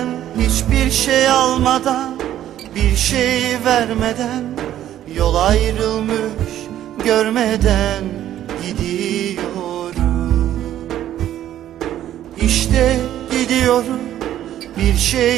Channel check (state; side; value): quieter; left; 12.0 dB